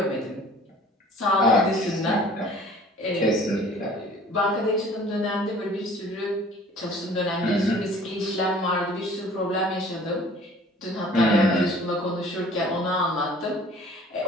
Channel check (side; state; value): both; normal; correlation 0.50